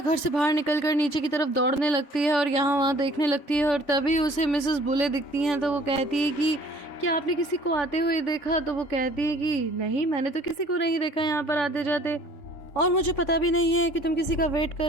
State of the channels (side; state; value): right; late; 3.5 ms